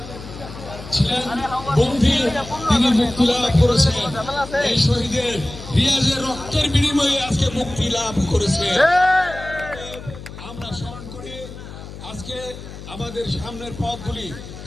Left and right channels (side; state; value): left; noise; hum, 13 dB below the sound